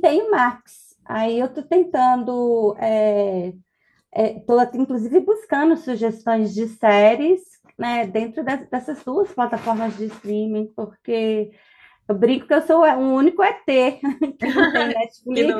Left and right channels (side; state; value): both; identical; correlation 1.00